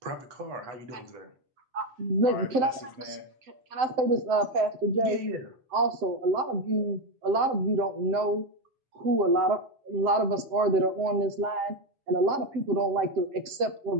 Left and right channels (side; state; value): left; late; 7.7 ms